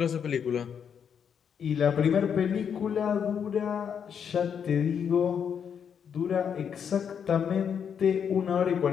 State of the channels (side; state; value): right; quieter; 7.6 dB